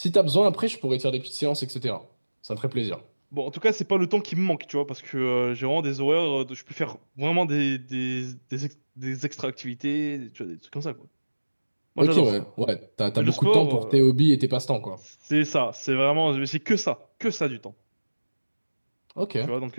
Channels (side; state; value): both; inverted; correlation -1.00